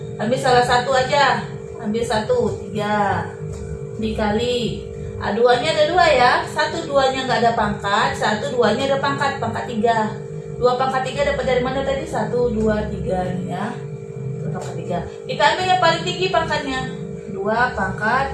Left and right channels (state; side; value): identical; both; correlation 1.00